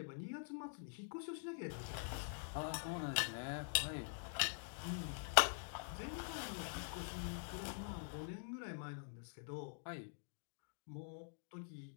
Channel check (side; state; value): right; silent; digital silence